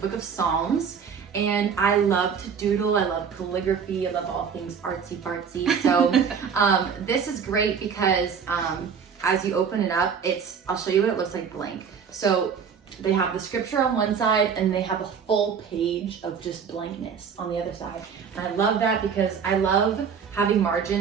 of Psalms, and I love to doodle. I love calligraphy. I love all things artsy fartsy. So this is great because as you open it up, I'll show you what it looks like blank. So they have the scripture on one side and they have a full page of just blankness on the other side. And I love that because I love having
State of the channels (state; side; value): quieter; left; 6.7 dB